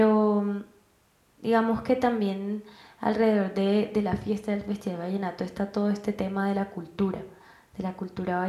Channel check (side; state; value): both; identical; correlation 1.00